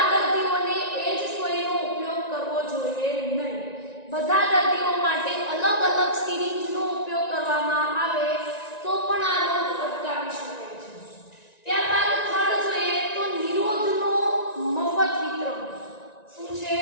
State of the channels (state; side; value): late; right; 1.9 ms